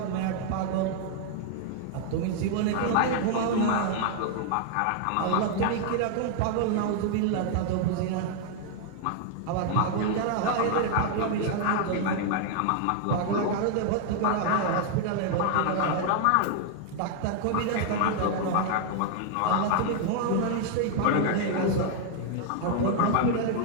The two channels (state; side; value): different; both; correlation 0.00